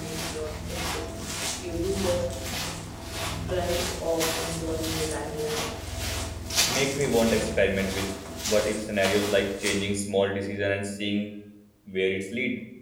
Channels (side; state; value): both; identical; correlation 1.00